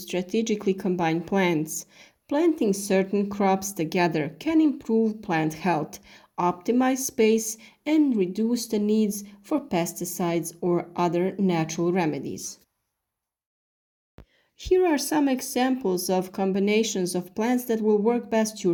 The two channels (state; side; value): identical; both; correlation 1.00